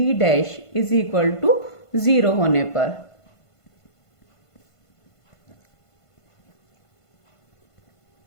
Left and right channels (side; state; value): right; late; 1.5 ms